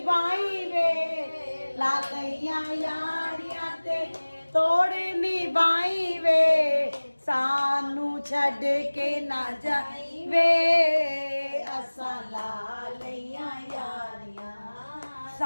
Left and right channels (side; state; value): both; inverted; correlation -1.00